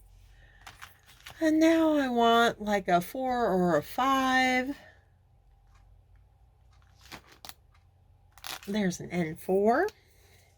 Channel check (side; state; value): both; identical; correlation 1.00